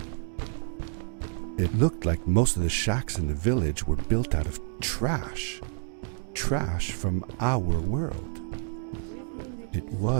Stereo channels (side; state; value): left; silent; digital silence